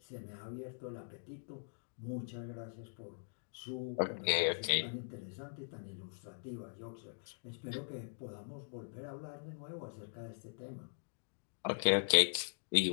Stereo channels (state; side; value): silent; right; digital silence